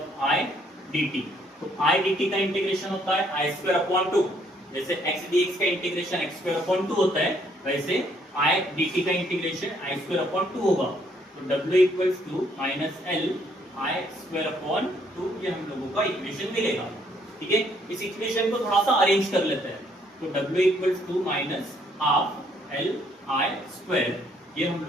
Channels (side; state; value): both; normal; correlation 0.68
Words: I dt। तो आई dt का इंटीग्रेशन होता है आई स्क्वायर अपॉन 2, जैसे x dx का इंटीग्रेशन x स्क्वायर अपॉन 2 होता है, वैसे आई dt का इंटीग्रेशन आई स्क्वायर अपॉन 2 होगा। तो w equals to minus L I square upon 2, ये हम लोगों का इक्वेशन मिलेगा। ठीक है, इस इक्वेशन को थोड़ा सा अरेंज कर लेते हैं। तो w equals to minus half L I square, ये हम